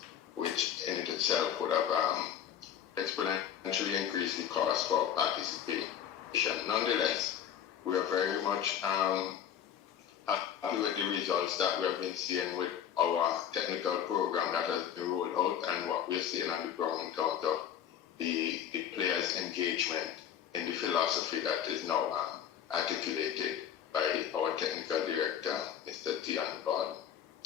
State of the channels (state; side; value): quieter; right; 9.4 dB